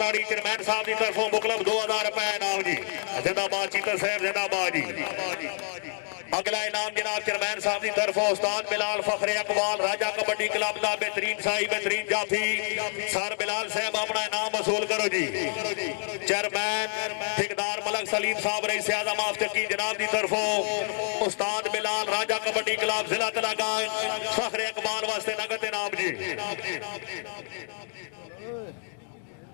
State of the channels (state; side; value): silent; right; digital silence